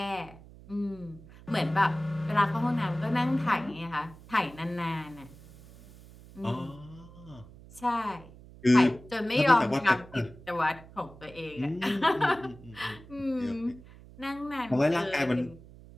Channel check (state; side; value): noise; right; hum, 20 dB below the sound